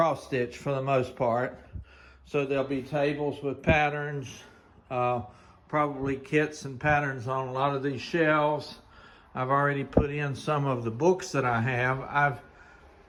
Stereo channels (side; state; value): both; identical; correlation 1.00